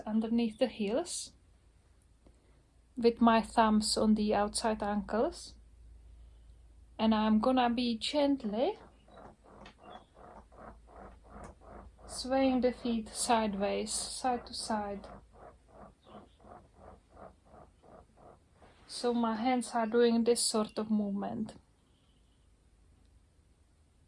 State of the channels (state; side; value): identical; both; correlation 1.00